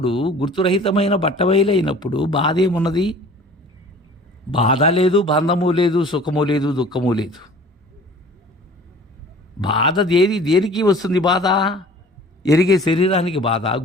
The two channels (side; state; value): both; normal; correlation 0.46